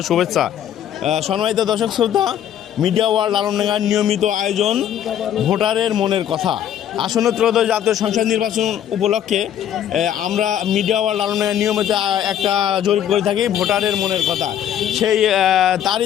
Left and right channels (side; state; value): right; quieter; 10.3 dB